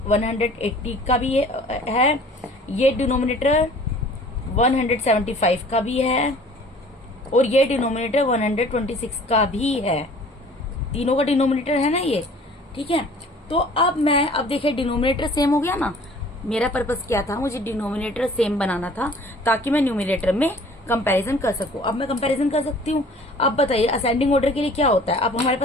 180 का भी है, ये डिनोमिनेटर 175 का भी है, और ये डिनोमिनेटर 126 का भी है। तीनों का डिनोमिनेटर है ना ये। ठीक है, तो अब देखिए डिनोमिनेटर सेम हो गया ना। मेरा पर्पस क्या था, मुझे डिनोमिनेटर सेम बनाना था ताकि मैं न्यूमरेटर में कंपैरिजन कर सकूं। अब मैं कंपैरिजन कर सकती हूँ। अब बताइए असेंडिंग ऑर्डर के लिए क्या होता है। अब हमारे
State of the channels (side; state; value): both; normal; correlation 0.50